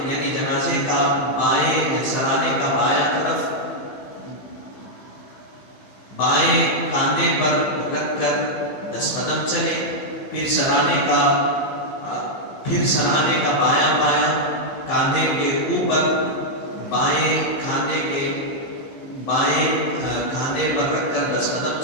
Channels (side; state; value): right; late; 15 ms